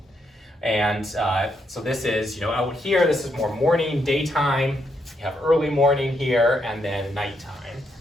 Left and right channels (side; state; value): both; normal; correlation 0.78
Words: And so this is, out here, this is more morning, daytime. You have early morning here, and then nighttime.